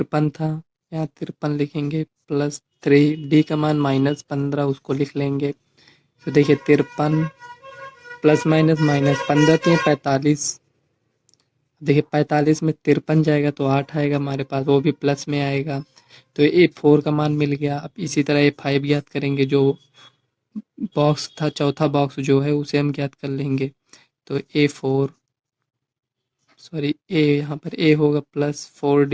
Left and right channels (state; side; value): identical; both; correlation 1.00